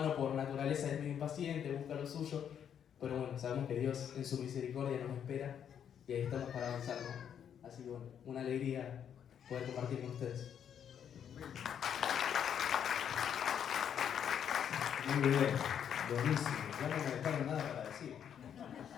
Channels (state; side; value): quieter; right; 8.7 dB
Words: por naturaleza es medio impaciente, busca lo suyo, pero bueno, sabemos que Dios en su misericordia nos espera y ahí estamos para avanzar, ¿no? Así que bueno, una alegría poder compartir con ustedes. Muy bien, buenísimo, ya no me dejaron nada para decir.